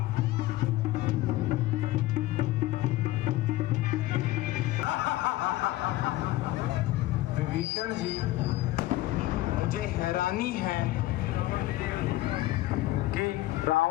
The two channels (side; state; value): right; quieter; 16.8 dB